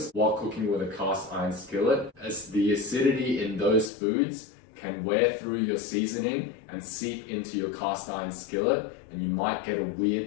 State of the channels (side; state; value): right; drops out; at 3.9 s